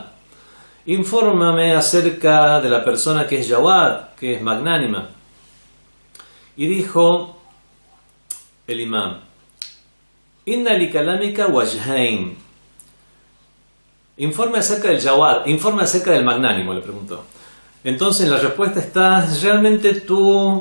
Infórmame acerca de la persona que es Jawad, que es magnánima. Y dijo el imam: Inna li kalamika wajhain. Informe acerca del Jawad, informe acerca del magnánimo, le preguntó. Entonces la respuesta está: realmente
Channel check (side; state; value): both; inverted; correlation -1.00